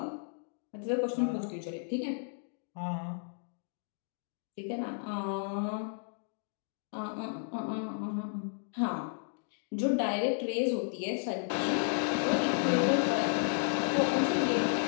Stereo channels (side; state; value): right; silent; digital silence